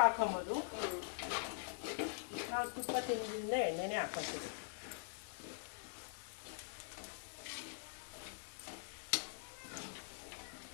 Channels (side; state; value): right; silent; digital silence